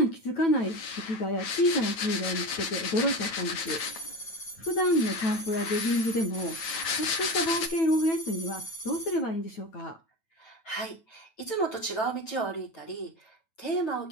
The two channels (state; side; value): late; right; 9.1 ms